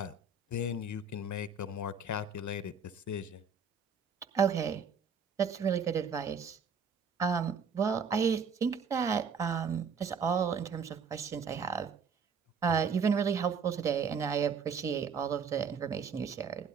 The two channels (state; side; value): quieter; left; 5.3 dB